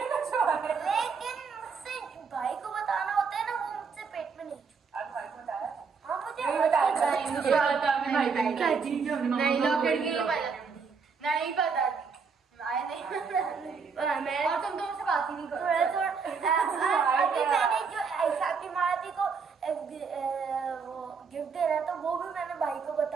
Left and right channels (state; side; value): quieter; left; 5.4 dB